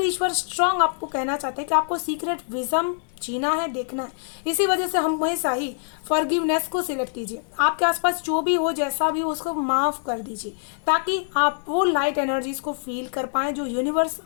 ईश्वर स्ट्रांग आपको कहना चाहते हैं कि आपको सीक्रेट विजन जीना है, देखना है। इसी वजह से हम हमेशा ही फॉरगिवनेस को सिलेक्ट कीजिए। आपके आसपास जो भी हो, जैसा भी हो, उसको माफ़ कर दीजिए, ताकि आप वो लाइट एनर्जीज को फील कर पाएँ जो यूनिवर्स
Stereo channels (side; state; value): right; silent; digital silence